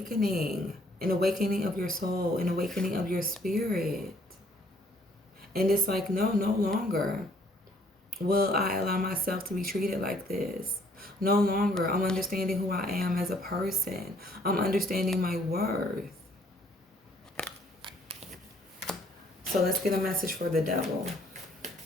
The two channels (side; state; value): both; normal; correlation 0.63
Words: of your soul, an awakening of your spirit. And it's like, no longer will I allow myself to be treated like this. No longer. I'm understanding who I am as a person. I'm understanding my worth. So let's get a message for the devil.